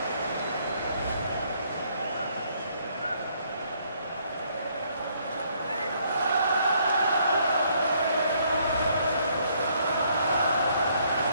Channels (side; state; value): both; inverted; correlation -0.68